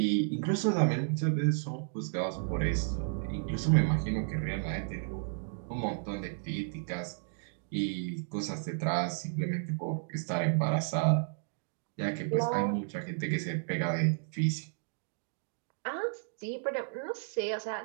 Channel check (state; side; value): silent; left; digital silence